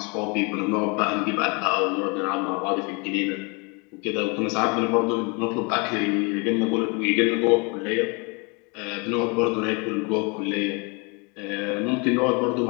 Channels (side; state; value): right; quieter; 31.1 dB